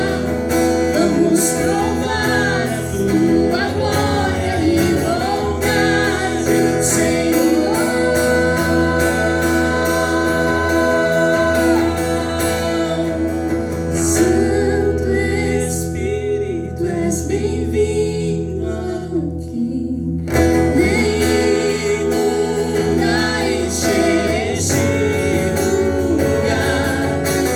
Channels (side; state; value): both; identical; correlation 1.00